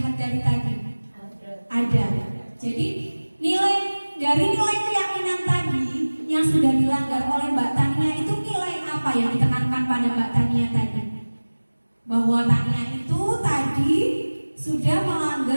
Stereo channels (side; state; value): both; inverted; correlation -1.00